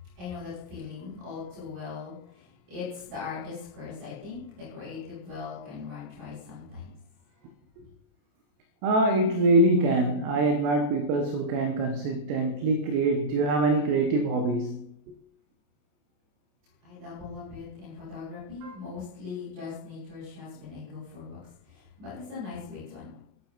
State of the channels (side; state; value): left; late; 28 ms